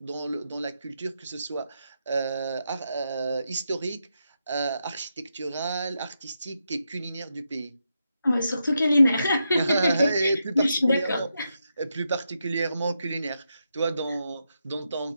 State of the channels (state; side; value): inverted; both; correlation -0.84